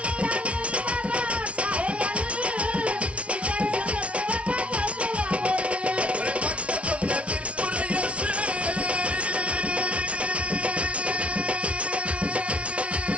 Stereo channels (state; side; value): late; left; 0.062 ms